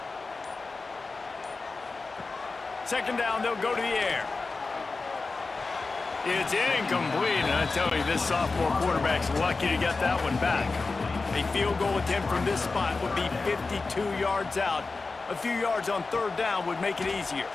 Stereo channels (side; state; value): right; quieter; 3.9 dB